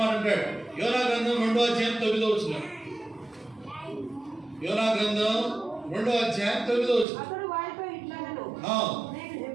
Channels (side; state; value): left; drops out; at 7.1 s